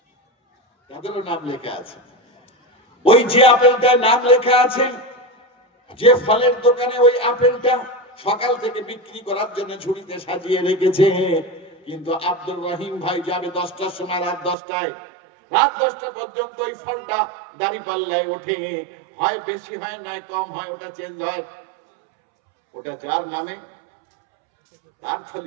তাদেরও নাম লেখা আছে। ওই যে আপেলটার নাম লেখা আছে, যে ফলের দোকানে ওই আপেলটা সকাল থেকে বিক্রি করার জন্য ঝুড়িতে সাজিয়ে রেখেছে। কিন্তু আব্দুর রহিম ভাই যাবে 10টার সময়, রাত 10টায়। রাত 10টা পর্যন্ত ওই ফলটা দাঁড়িপাল্লায় ওঠে, হয় বেশি হয় নয় কম হয়, ওটা চেঞ্জ হয়। ওটা যার নামে তার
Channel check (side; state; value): left; drops out; at 14.6 s